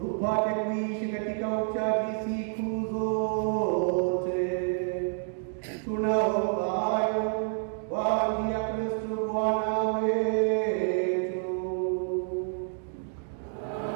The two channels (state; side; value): silent; left; 59 dB below the other